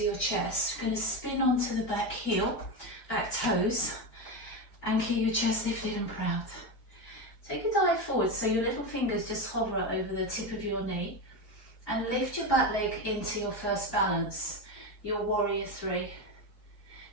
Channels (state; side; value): late; right; 4.6 ms